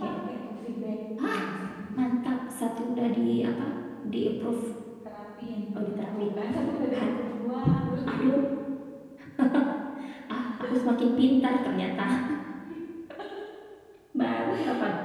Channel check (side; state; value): both; identical; correlation 1.00